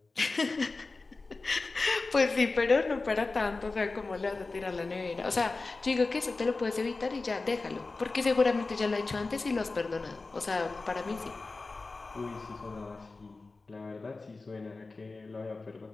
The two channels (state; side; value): quieter; right; 3.7 dB